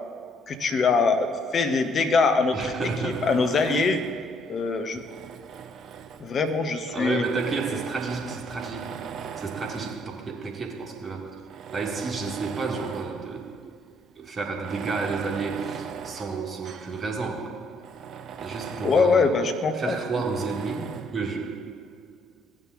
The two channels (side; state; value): both; normal; correlation 0.68